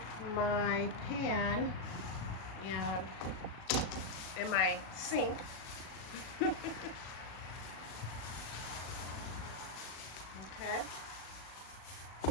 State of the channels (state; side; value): late; right; 37 ms